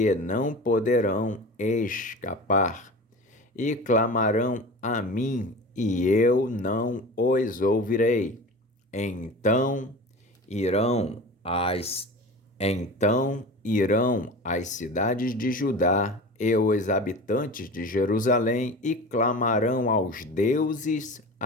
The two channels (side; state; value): both; normal; correlation 0.34